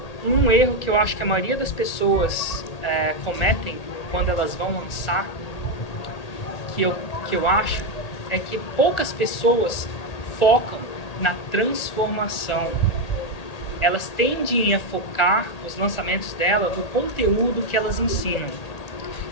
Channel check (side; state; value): right; late; 1.8 ms